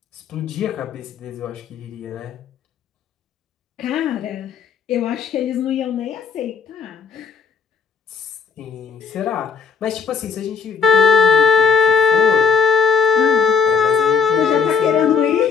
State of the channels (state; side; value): quieter; right; 6.2 dB